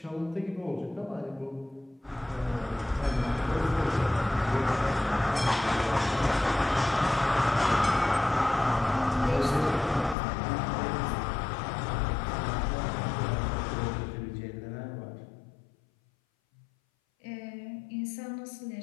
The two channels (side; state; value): right; drops out; at 10.2 s